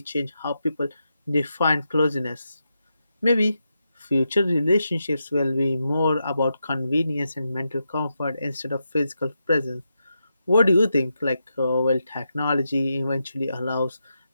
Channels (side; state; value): both; inverted; correlation -0.86